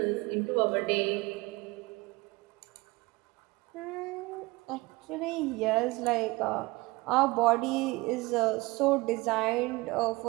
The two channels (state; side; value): quieter; left; 22.7 dB